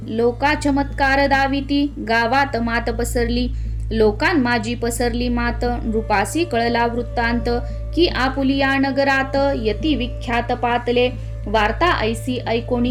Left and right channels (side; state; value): both; identical; correlation 1.00